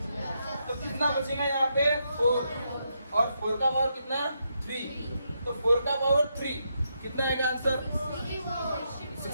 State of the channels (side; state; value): both; inverted; correlation -0.81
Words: तो कितना बचेगा यहाँ पे 4 और 4 का पावर कितना 3। तो 4 का पावर 3 कितना आएगा आंसर